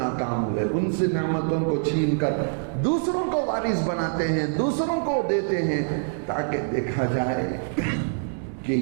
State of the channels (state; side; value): silent; left; 62 dB below the other